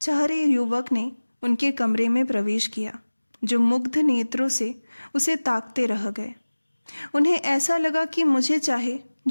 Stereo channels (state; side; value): inverted; both; correlation -1.00